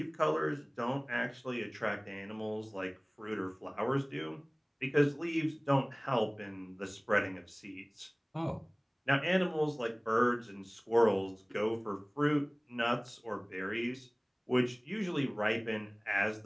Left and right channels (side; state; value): both; identical; correlation 1.00